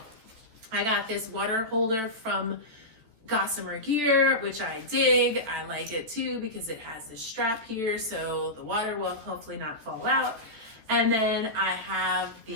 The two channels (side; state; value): left; late; 14 ms